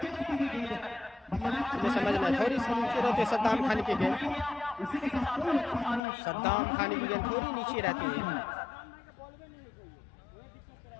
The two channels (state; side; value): drops out; right; at 6.0 s